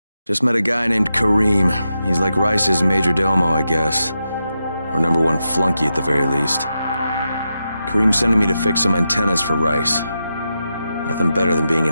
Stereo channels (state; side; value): inverted; both; correlation -0.88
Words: Just met a guy named Karim. He's like Rice's major domo, I guess. Or #1 flunky at the very least. Karim's sending me to fix some antennas for Rice. Nothing better than being